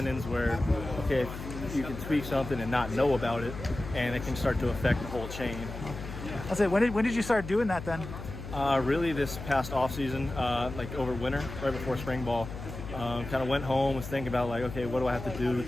where, okay, you can tweak something and not know about it, and it can start to affect the whole chain. I'll say, when did you start doing that then? Really this past off season, over winter, right before spring ball. Kind of went home, was thinking about okay, what do I have to do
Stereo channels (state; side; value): noise; left; hum, 9 dB below the sound